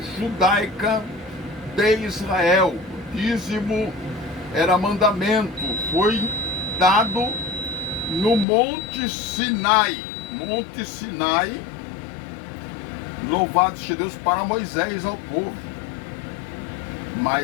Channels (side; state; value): right; drops out; at 8.5 s